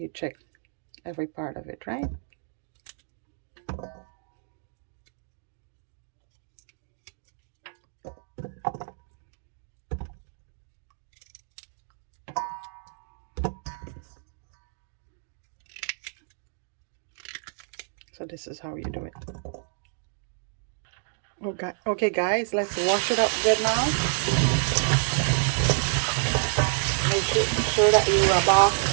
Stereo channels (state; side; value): silent; left; digital silence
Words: check every part of it, right? So this is how you do it. Okay guys, let's wash it up good now. Make sure that you rub off